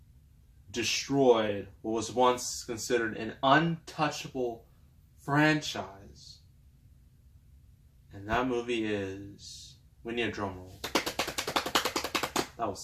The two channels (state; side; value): identical; both; correlation 1.00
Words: destroyed what was once considered an untouchable franchise. And that movie is... We need a drum roll. That